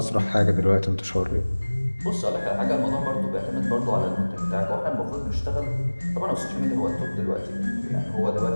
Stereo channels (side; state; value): both; inverted; correlation -1.00